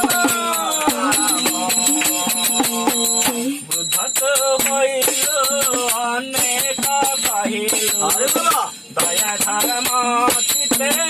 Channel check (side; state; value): both; identical; correlation 1.00